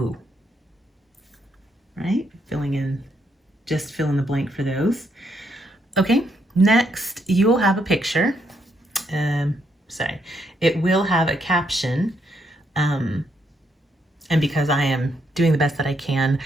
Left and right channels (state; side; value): normal; both; correlation 0.76